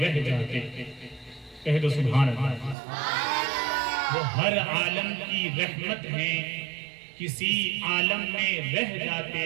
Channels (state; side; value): drops out; left; at 2.8 s